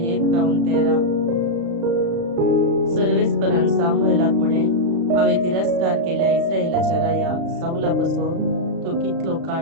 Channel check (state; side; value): late; left; 35 ms